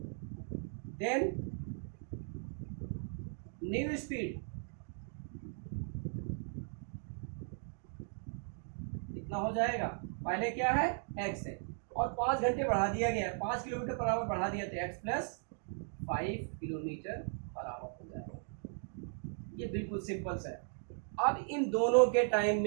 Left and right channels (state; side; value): silent; left; 53 dB below the other